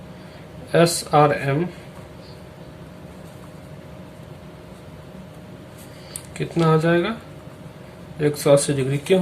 SRM कितना हो जाएगा, 180 डिग्री। क्यों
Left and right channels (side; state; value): both; identical; correlation 1.00